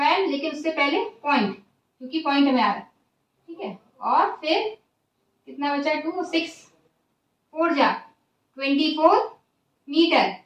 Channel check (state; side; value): identical; both; correlation 1.00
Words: लेकिन उससे पहले पॉइंट, क्योंकि पॉइंट में आ रहा है, ठीक है। और फिर कितना बचा? 2 6 4 जा 24 मीटर।